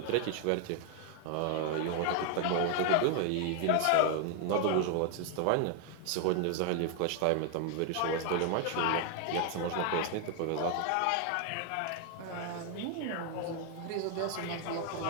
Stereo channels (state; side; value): different; both; correlation 0.01